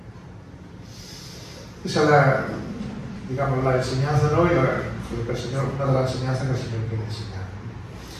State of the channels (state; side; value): identical; both; correlation 1.00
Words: Esa es la enseñanza, ¿no? Y lo que el Señor, una de las enseñanzas que el Señor quiere enseñar.